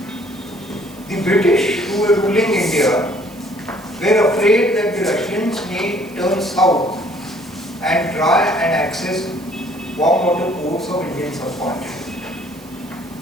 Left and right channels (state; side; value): noise; right; hiss, 25 dB below the sound